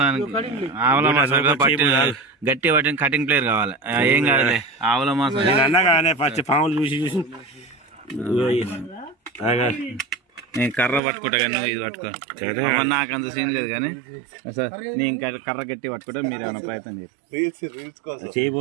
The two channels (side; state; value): left; drops out; at 11.0 s